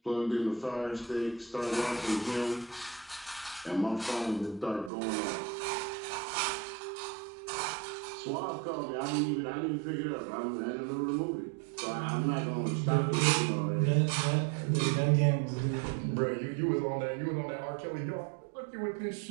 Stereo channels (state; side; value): drops out; left; at 4.9 s